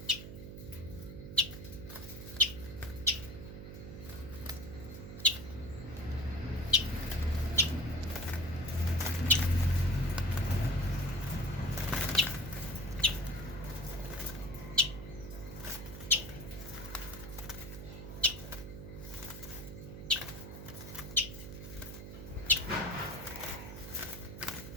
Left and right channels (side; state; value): right; noise; hum, 10 dB below the sound